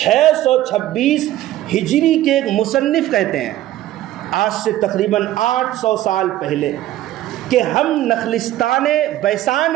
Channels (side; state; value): left; quieter; 14.2 dB